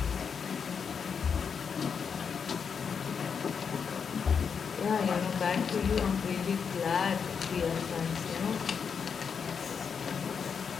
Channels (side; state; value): right; quieter; 6.4 dB